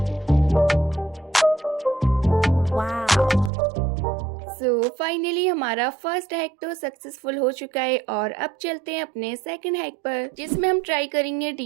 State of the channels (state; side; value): drops out; left; at 3.5 s